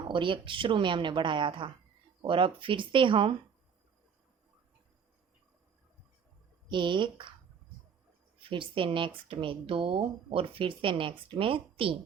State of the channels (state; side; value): quieter; left; 6.8 dB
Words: एक शुरू में हमने बढ़ाया था। और अब फिर से हम 1, फिर से नेक्स्ट में 2 और फिर से नेक्स्ट में 3,